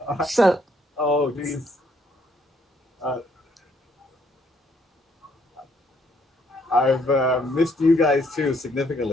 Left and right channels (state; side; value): normal; both; correlation 0.68